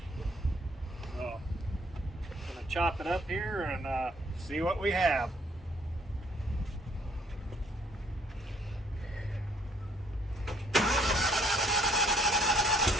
So, I'm going to chop it up here and see what we have.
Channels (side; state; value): both; normal; correlation 0.65